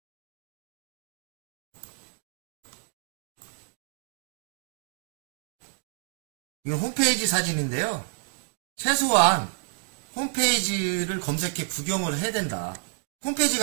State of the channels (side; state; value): left; silent; digital silence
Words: 이건 홈페이지 사진인데요. 최소한 홈페이지를 검색해 구경을 해야 된다. 홈페이지